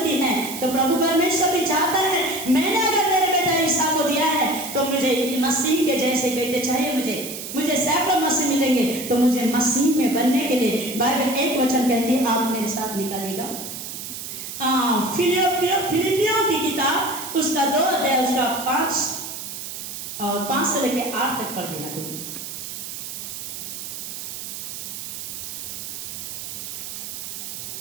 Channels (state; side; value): noise; right; hiss, 8 dB below the sound